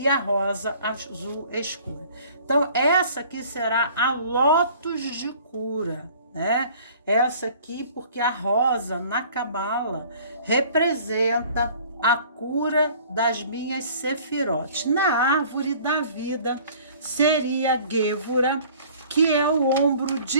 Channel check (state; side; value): inverted; both; correlation -0.51